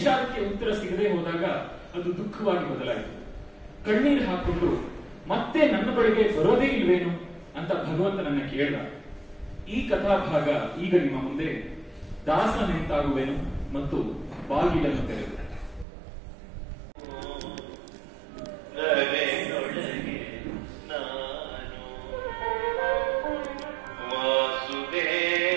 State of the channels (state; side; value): drops out; left; at 15.9 s